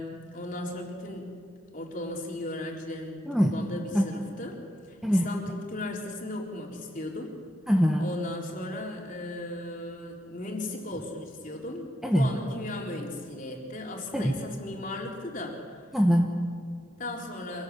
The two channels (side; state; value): both; normal; correlation 0.82